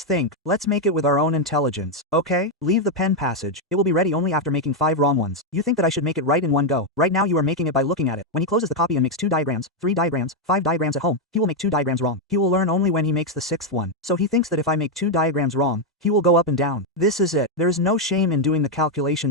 think. Let's make it with our own intelligence. Okay? Leave the pen passage. It will be ready only after making 5 wrong ones. You think that I should make it right in one go. Right now you are making it by looking at it. When he closes the copy and makes 2 diagrams, 3 diagrams, 5 diagrams at home, he will make 2 diagrams wrong. He will learn only when he makes the 6th one. So he thinks that if I make 2 diagrams wrong, he will go up and down. This is it. There is no shame in doing the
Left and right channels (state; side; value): normal; both; correlation 0.02